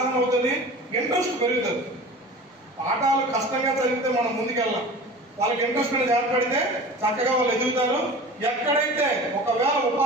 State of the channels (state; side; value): normal; both; correlation 0.38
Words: అవుతుంది, ఇంట్రెస్ట్ పెరుగుతుంది. పాఠాలు కష్టంగా చదివితే మనం ముందుకెళ్ళాం, వాళ్ళకి ఇంట్రెస్ట్ మీద ఏర్పడితే చక్కగా వాళ్ళు ఎదుగుతారు. ఎక్కడైతే ఒకవేళ